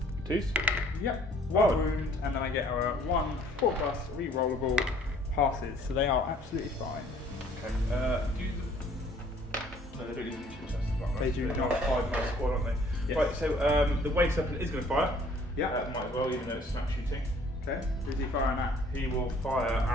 2s? Yep. 1 Oh. wound, and then I get a 1 4 plus re-rollable passes. So they are absolutely fine. Okay. No, they don't need to test the block. They do They're not. a 5-man squad, aren't they? Yes. Right, so the Waste Weapon is going to fire. Yeah. Might as well, even though it's snap shooting. Okay. Who's he firing at? He will fire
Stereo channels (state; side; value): normal; both; correlation 0.58